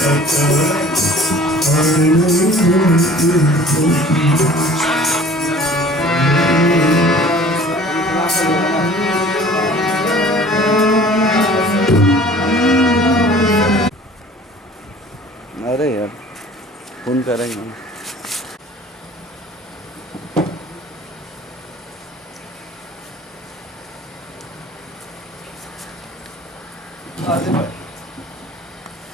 अरे यार फोन करेंगे हम।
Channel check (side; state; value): both; normal; correlation 0.48